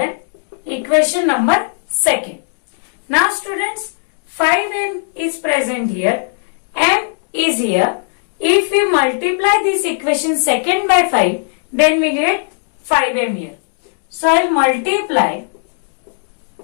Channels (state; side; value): silent; right; digital silence